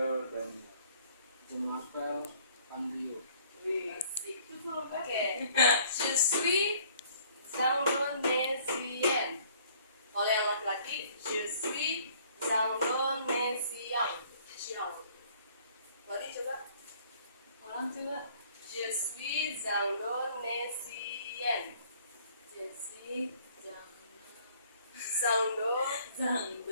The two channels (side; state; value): both; inverted; correlation -0.58